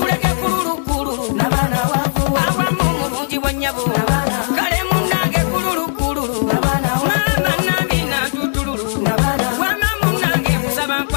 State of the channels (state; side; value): silent; right; 59 dB below the other